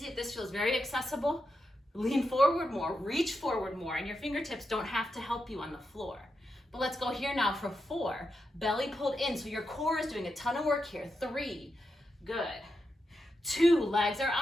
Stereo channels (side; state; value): both; normal; correlation 0.86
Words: if this feels very accessible, lean forward more, reach forward more, and your fingertips don't have to help you on the floor. But let's go here now for 4. Belly pulled in, so your core is doing a ton of work here. 3, good. 2, legs are